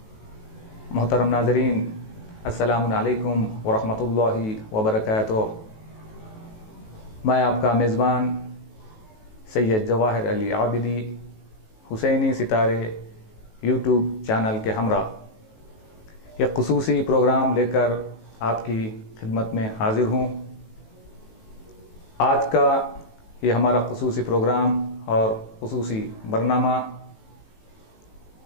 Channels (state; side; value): late; right; 18 ms